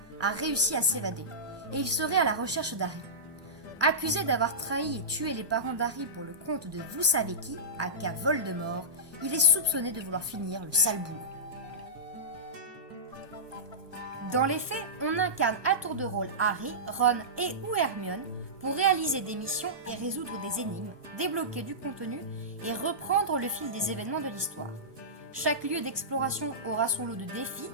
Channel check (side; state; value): left; late; 1.2 ms